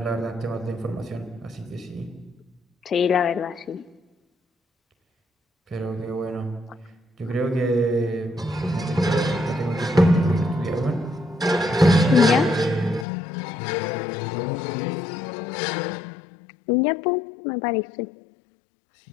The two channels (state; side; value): drops out; right; at 13.1 s